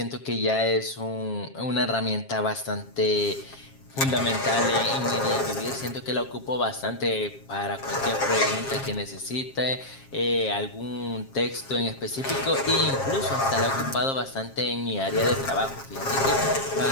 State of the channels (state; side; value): late; right; 7.4 ms